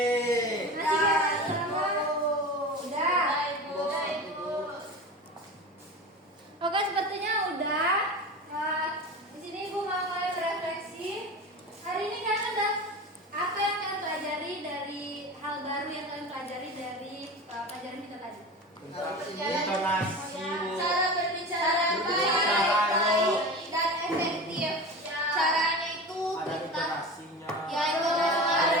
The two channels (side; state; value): both; normal; correlation 0.30